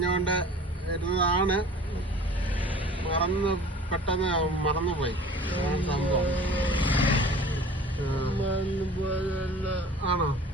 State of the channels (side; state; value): both; normal; correlation 0.44